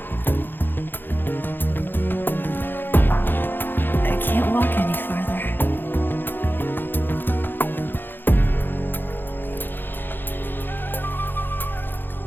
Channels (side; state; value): right; late; 0.097 ms